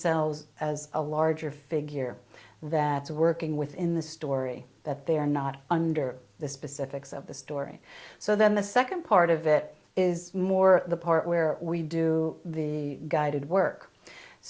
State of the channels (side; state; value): both; identical; correlation 1.00